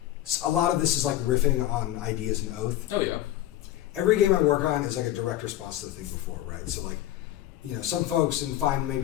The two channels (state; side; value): quieter; right; 13.7 dB